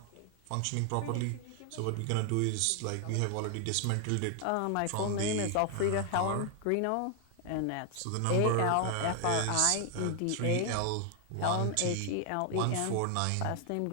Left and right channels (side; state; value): both; different; correlation 0.00